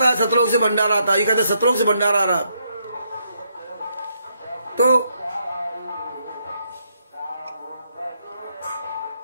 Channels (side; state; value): both; inverted; correlation -0.76